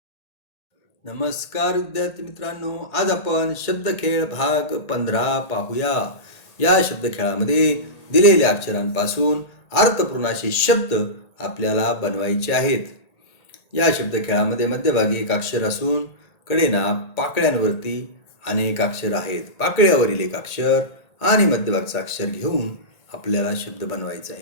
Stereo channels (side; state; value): right; late; 1.8 ms